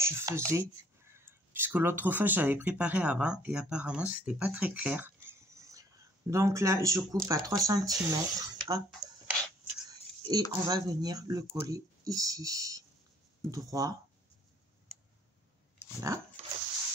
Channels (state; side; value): normal; both; correlation 0.60